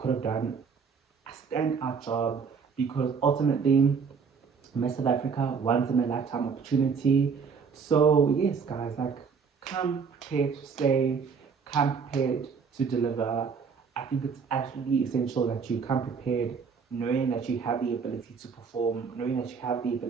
have done a standout job because ultimately Miss South Africa once in a lifetime opportunity. So yes, guys, like come prepared to slay, come prepared to deliver. I think it's absolutely essential that you come prepared, knowing that you have the ability to perform, knowing that you have the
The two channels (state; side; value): quieter; left; 5.9 dB